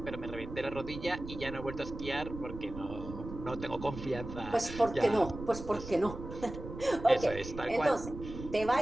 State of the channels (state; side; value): noise; right; rumble, 10 dB below the sound